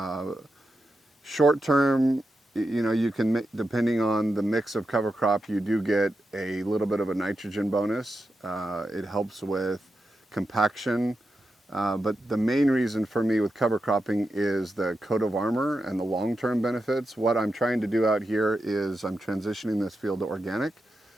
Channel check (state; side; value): normal; both; correlation 0.88